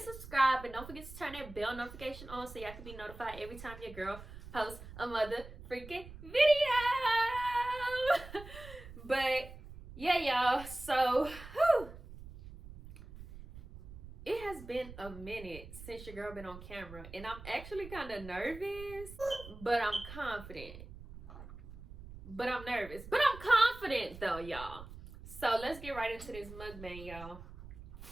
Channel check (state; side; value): noise; right; rumble, 15 dB below the sound